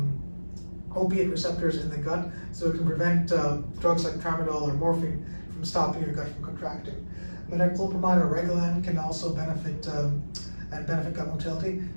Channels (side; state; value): both; inverted; correlation -1.00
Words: opiate receptors in the gut, so it can prevent drugs like tramadol or morphine from stopping your gut from contracting. Metoclopramide or Reglan can also benefit gut motility.